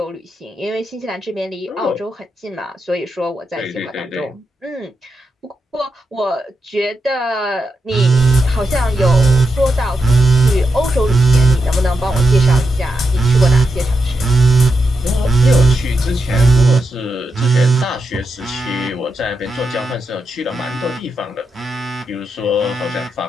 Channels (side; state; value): both; normal; correlation 0.85